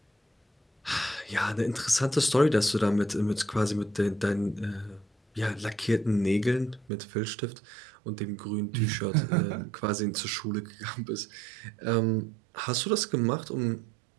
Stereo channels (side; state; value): left; drops out; at 6.9 s